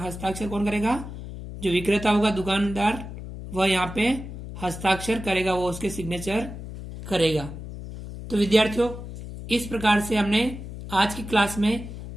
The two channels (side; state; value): left; noise; hum, 10 dB below the sound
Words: हस्ताक्षर कौन करेगा? जो विक्रेता होगा, दुकानदार, वह यहाँ पे हस्ताक्षर करेगा, वो उसके सिग्नेचर करेगा। तो विद्यार्थियों, इस प्रकार से हमने आज की क्लास में